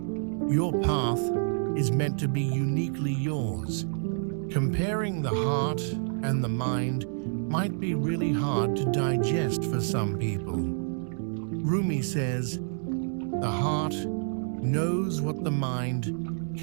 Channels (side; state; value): left; silent; digital silence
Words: your path, is meant to be uniquely yours. Comparing the heart and the mind might be really hard to digest for some people. Rumi says, the heart knows what the mind